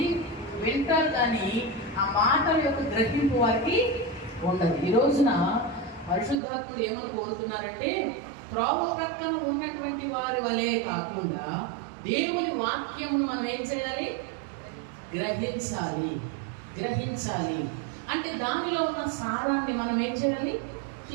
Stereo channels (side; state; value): left; drops out; at 6.4 s